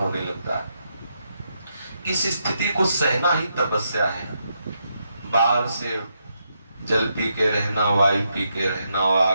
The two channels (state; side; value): inverted; both; correlation -0.81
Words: लगता है। इस स्थिति को सहना ही तपस्या है। बाहर से जल पी के रहना, वायु पी के रहना और